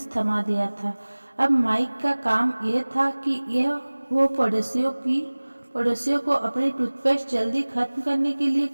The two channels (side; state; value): both; inverted; correlation -1.00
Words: थमा दिया था। अब माइक का काम यह था कि वो पड़ोसियों को अपनी टूथपेस्ट जल्दी खत्म करने के लिए